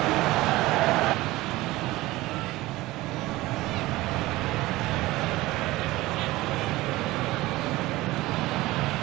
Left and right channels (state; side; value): quieter; left; 18.8 dB